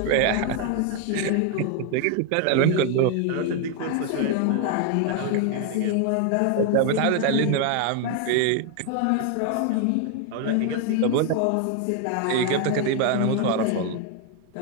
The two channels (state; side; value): different; both; correlation 0.00